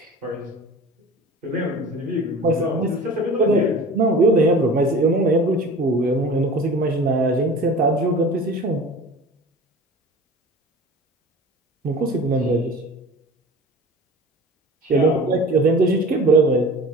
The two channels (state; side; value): normal; both; correlation 0.39